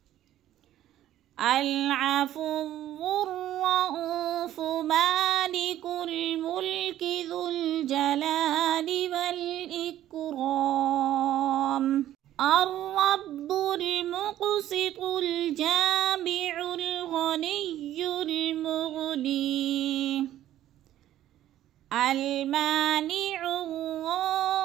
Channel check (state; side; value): quieter; left; 12.7 dB